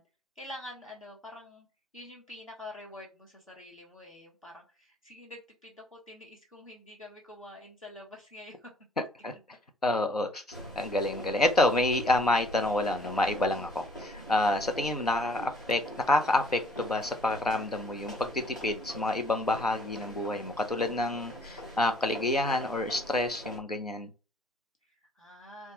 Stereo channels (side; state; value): both; normal; correlation 0.59